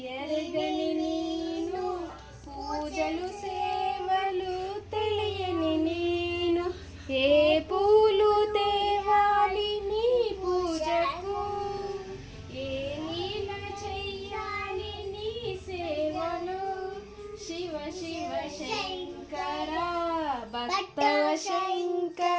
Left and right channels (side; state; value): both; identical; correlation 1.00